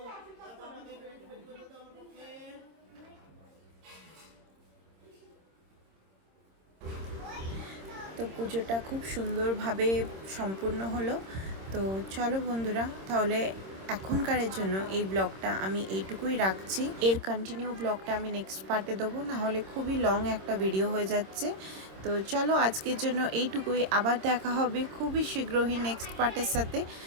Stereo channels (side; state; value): left; late; 26 ms